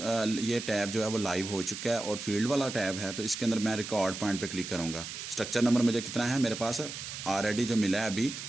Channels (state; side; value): noise; right; hiss, 8 dB below the sound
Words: ये टैब जो है वो लाइव हो चुका है और फील्ड वाला टैब है, तो इसके अंदर मैं रिकॉर्ड पॉइंट पे क्लिक करूँगा। स्ट्रक्चर नंबर मुझे कितना है, मेरे पास ऑलरेडी जो मिला है अभी